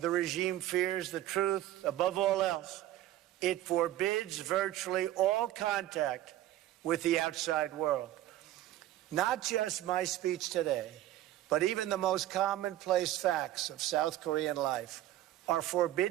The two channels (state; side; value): quieter; left; 14.0 dB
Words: regime fears the truth above all else, it forbids virtually all contact with the outside world. Not just my speech today, but even the most commonplace facts of South Korean life are